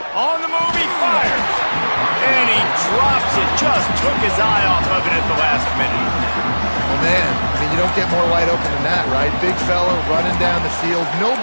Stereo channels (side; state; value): both; inverted; correlation -1.00